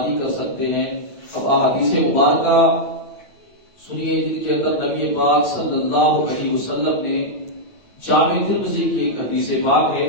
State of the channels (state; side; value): late; right; 8.9 ms